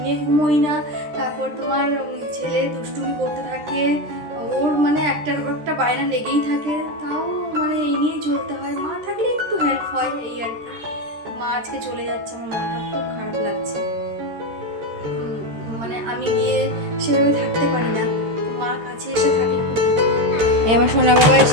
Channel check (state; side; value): late; left; 13 ms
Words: ঘুমোই না। তারপর তোমার ছেলে দুষ্টুমি করতে থাকে, ওর মানে একটার পর একটা বায়না লেগেই থাকে, তাও মানে এই নিয়েই চলতে হয়। মা থাকলে একটু হেল্প হয়, এই আর কি। মা আজকে চলে যাচ্ছে, আমার মনটা খুব খারাপ লাগছে। মানে আমি গিয়ে সেভাবে থাকতে পারি না, মা কাছে এসে থাকলে খুব। আমার সোনা বাবা